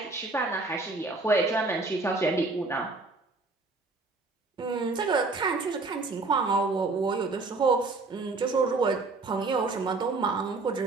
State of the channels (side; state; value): left; quieter; 3.6 dB